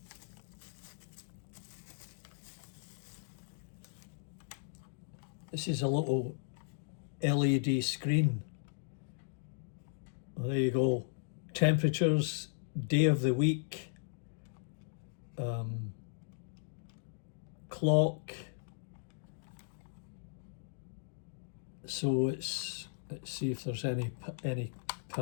This is a little LED screen. Well, there you go. Temperatures, day of the week, clock. So let's see if there's any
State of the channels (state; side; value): silent; right; digital silence